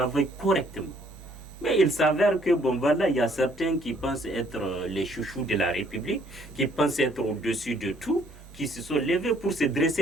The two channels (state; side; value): normal; both; correlation 0.64